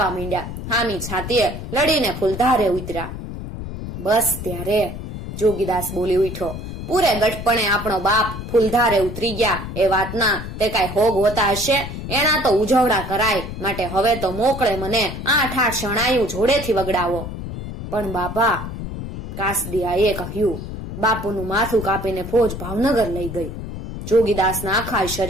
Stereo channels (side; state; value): left; noise; rumble, 8 dB below the sound